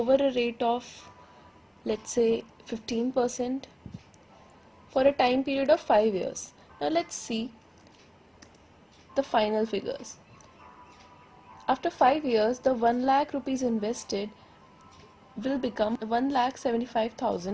a rate of, let's say, 15% for a time period of 5 years. Now let's see the final figures. After 5 years, the 1 lakh rupees invested will become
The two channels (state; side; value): identical; both; correlation 1.00